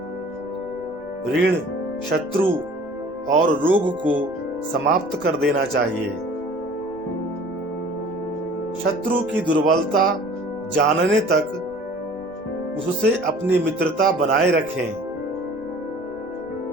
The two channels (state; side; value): noise; right; rumble, 27 dB below the sound